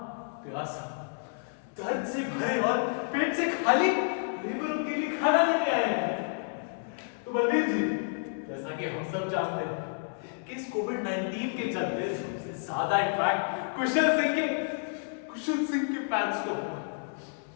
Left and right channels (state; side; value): silent; right; 58 dB below the other